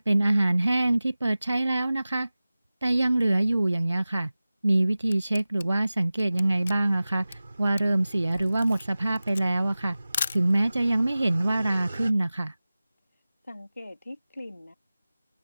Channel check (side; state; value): both; inverted; correlation -0.97